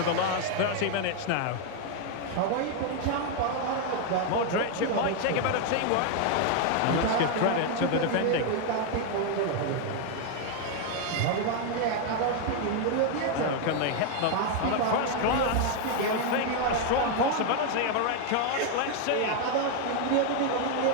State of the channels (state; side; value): different; both; correlation 0.01